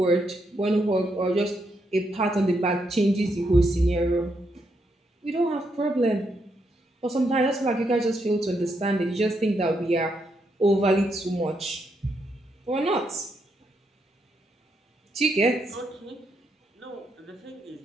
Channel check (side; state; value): both; normal; correlation 0.79